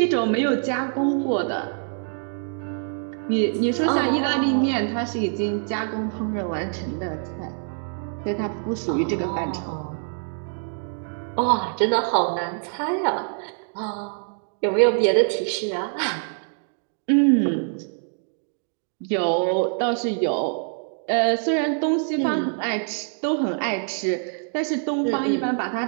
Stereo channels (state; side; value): silent; left; 62 dB below the other